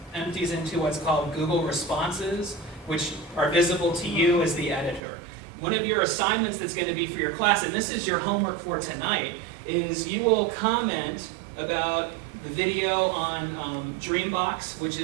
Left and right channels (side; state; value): left; drops out; at 5.0 s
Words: empties into what's called Google Responses, which are visible to you as the editor. One of your assignments that's going to be for your class, and this is your homework for tonight, is you will comment about the video on Dreambox, which